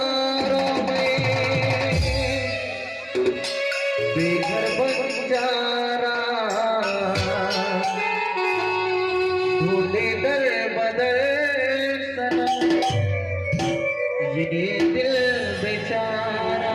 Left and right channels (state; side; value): identical; both; correlation 1.00